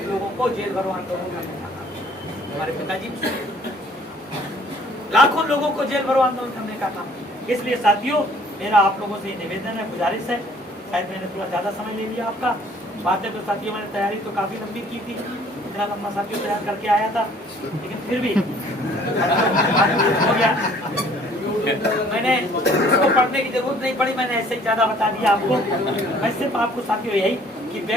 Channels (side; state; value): both; normal; correlation 0.56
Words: लोगों को जेल भरो आंदोलन करने का काम, हमारे पिताजी लाखों लोगों को जेल भरो आंदोलन करने का काम। इसलिए साथियों मेरा आप लोगों से निवेदन है, गुजारिश है, शायद मैंने थोड़ा ज्यादा समय ले लिया आपका। बातें तो साथियों मैंने तैयारी तो काफी लंबी की थी, इतना लंबा साथियों तैयार करके आया था, लेकिन फिर भी हो गया। मैंने इसको पढ़ने की जरूरत नहीं पड़ी, मैंने ऐसे ही ज्यादा बता दिया आपको। मैं सिर्फ आपको साथियों यही कि